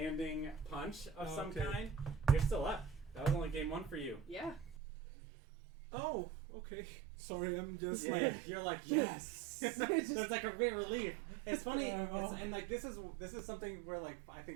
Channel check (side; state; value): left; drops out; at 4.8 s